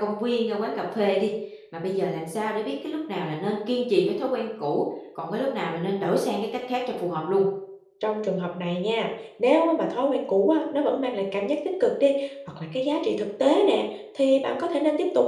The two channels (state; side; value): identical; both; correlation 1.00